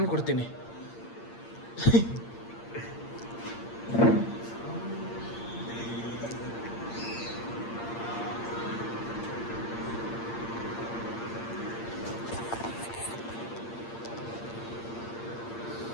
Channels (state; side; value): late; right; 8.7 ms